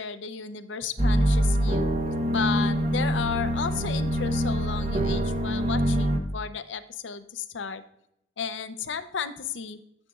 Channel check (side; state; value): both; normal; correlation 0.68